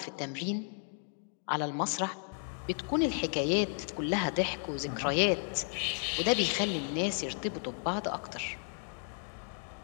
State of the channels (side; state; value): right; silent; 55 dB below the other